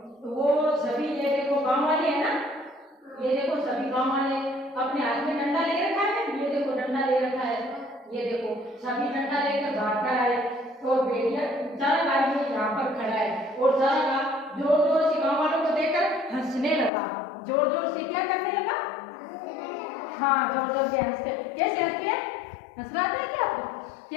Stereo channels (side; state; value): right; drops out; at 16.9 s